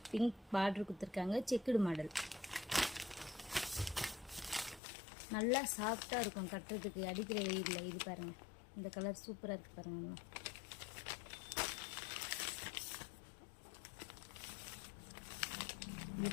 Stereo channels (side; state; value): right; drops out; at 4.8 s